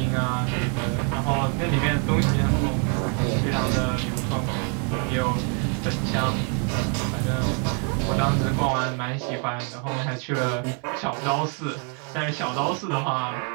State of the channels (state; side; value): quieter; left; 37.4 dB